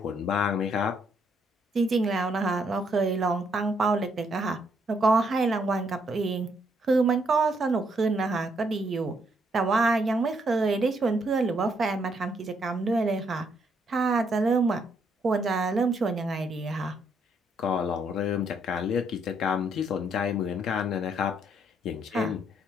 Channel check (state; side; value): normal; both; correlation 0.72